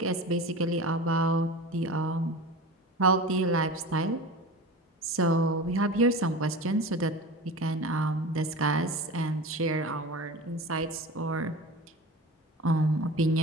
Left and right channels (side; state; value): both; normal; correlation 0.33